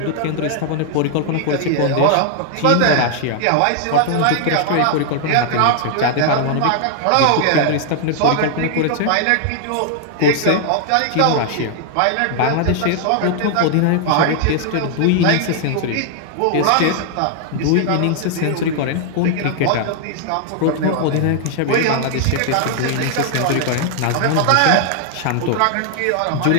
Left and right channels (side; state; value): both; different; correlation 0.00